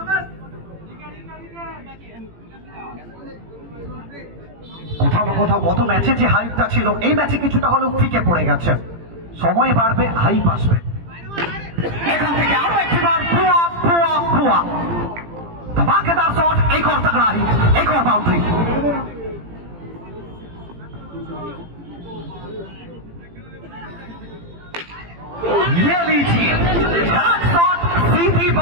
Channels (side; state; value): left; late; 18 ms